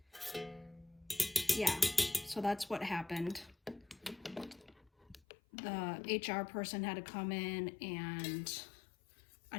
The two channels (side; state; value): right; drops out; at 5.2 s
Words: yeah, so that's what happened. The HR person had to come in, and